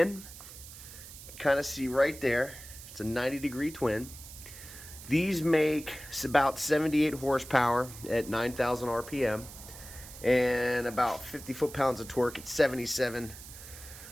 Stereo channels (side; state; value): right; noise; hiss, 15 dB below the sound